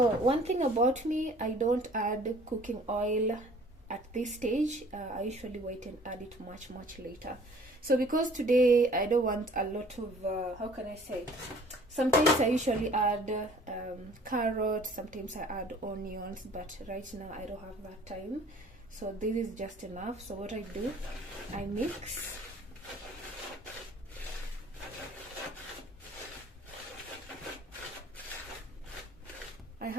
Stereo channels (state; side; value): normal; both; correlation 0.53